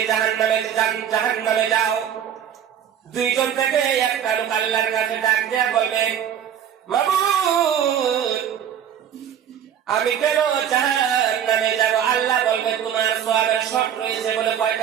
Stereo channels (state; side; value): quieter; left; 9.3 dB